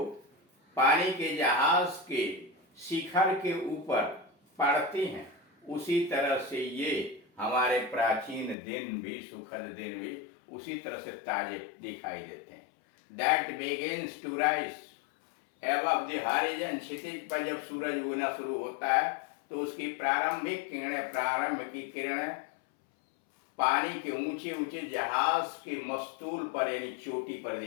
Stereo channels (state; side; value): drops out; right; at 8.6 s